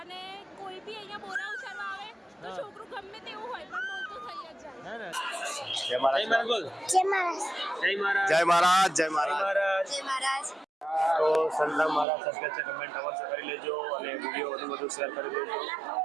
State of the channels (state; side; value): drops out; left; at 12.1 s